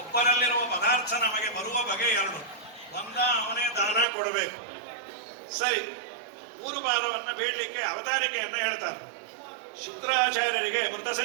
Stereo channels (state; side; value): drops out; left; at 4.0 s